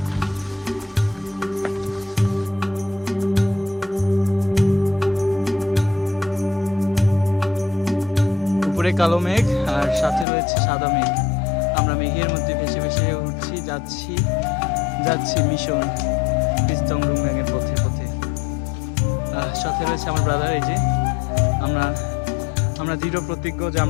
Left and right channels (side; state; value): right; drops out; at 10.2 s